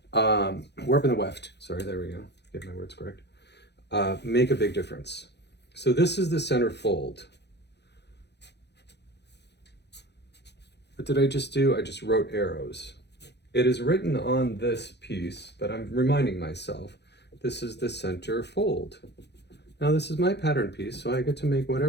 warp and the weft, sorry, there we go, get my words correct, make a big difference. So this is the center fold. What did I just do? I just wrote arrows. It is written on this piece, but I'm reminding myself, this is the center fold. Now this is my pattern piece, so I get to make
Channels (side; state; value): right; late; 0.50 ms